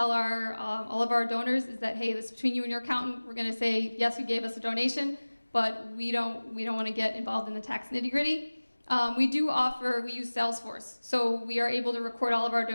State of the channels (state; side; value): inverted; both; correlation -1.00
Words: all of our donors is that, hey, this is between you and your accountant. We're going to say, yes, you gave us a donation, but we don't want to get involved in the tax nitty-gritty. We use Salesforce. So we are able to record all of our